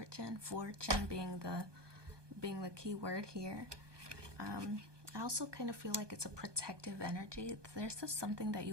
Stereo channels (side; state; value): left; late; 1.2 ms